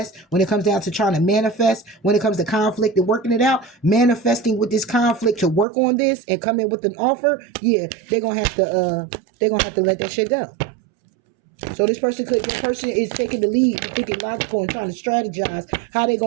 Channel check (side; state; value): left; drops out; at 5.7 s